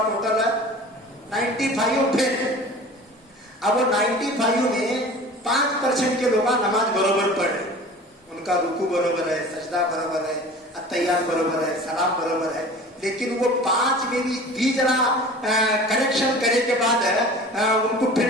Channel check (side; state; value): both; normal; correlation 0.41